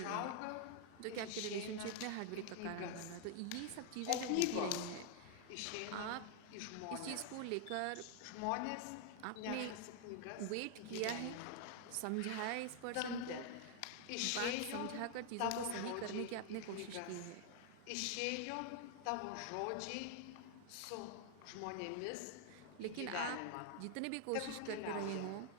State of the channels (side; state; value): both; different; correlation 0.00